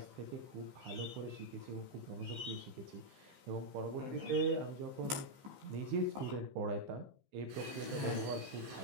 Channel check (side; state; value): left; late; 15 ms